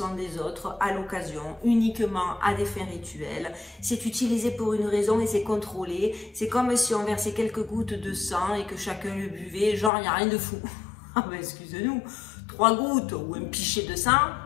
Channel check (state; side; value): drops out; right; at 9.9 s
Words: des autres à l'occasion, uniquement à des fins rituelles. C'est utilisé pour une raison et c'est contrôlé. C'est comme si on versait quelques gouttes de sang et que chacun le buvait, genre il n'y a rien de fou. Ah ben excusez-nous, 3 gouttes ou un pichet de sang,